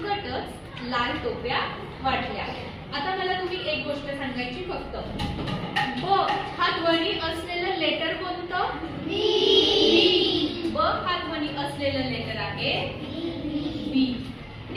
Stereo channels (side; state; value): both; identical; correlation 1.00